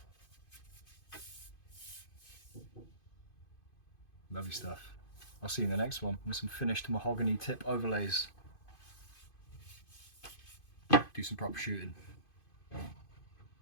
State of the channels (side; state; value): right; late; 2.5 ms